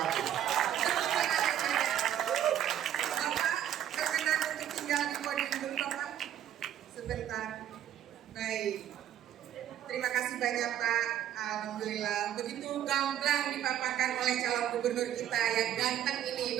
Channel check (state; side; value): quieter; left; 10.9 dB